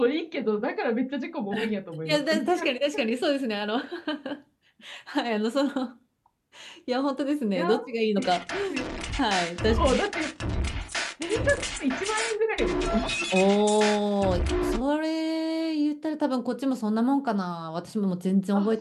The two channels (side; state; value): both; identical; correlation 1.00